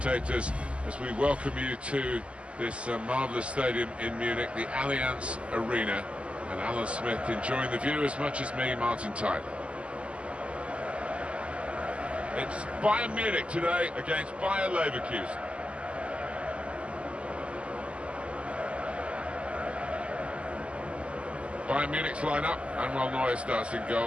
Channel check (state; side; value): late; left; 0.057 ms